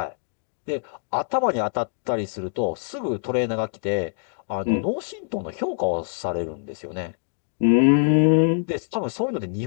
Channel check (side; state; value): right; silent; digital silence